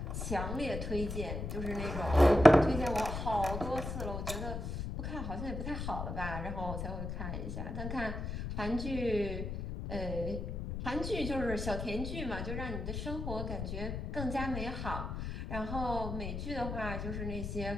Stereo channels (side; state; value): left; noise; rumble, 4 dB below the sound